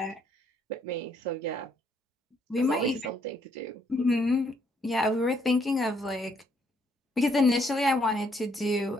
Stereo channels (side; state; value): both; normal; correlation 0.70